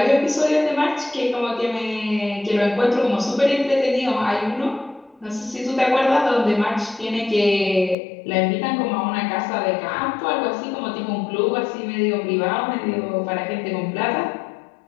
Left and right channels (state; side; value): drops out; right; at 8.0 s